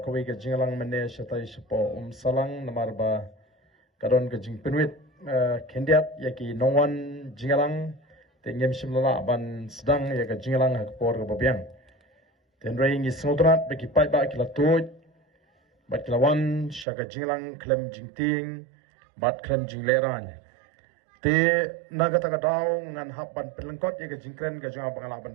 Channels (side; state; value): left; drops out; at 16.9 s